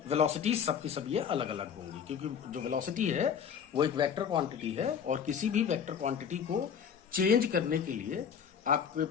वेलोसिटी सबकी सब ये अलग अलग होंगी, क्योंकि जो वेलोसिटी है वो एक वेक्टर क्वांटिटी है, और किसी भी वेक्टर क्वांटिटी को चेंज करने के लिए आपके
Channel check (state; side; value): quieter; right; 7.5 dB